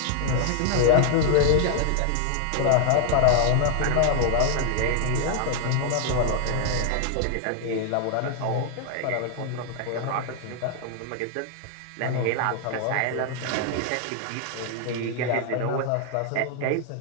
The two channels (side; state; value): both; different; correlation 0.00